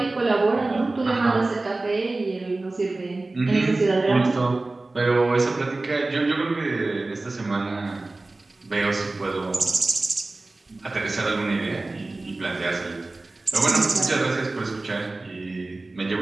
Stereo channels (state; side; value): quieter; left; 3.1 dB